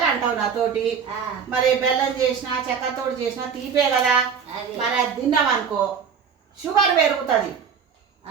అంటావు నాతోటి. మరి బెల్లం చేసినా చక్కెరతోటి చేసినా తీపే కదా. మరి అది తిన్నాం అనుకో షుగర్ పెరుగుతుంది.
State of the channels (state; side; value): quieter; left; 6.7 dB